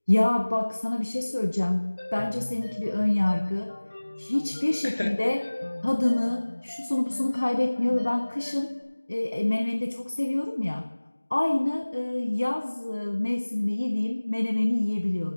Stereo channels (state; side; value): inverted; both; correlation -1.00